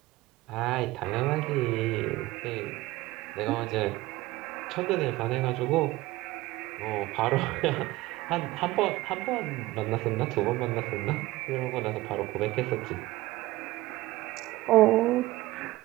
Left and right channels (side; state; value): left; quieter; 18.5 dB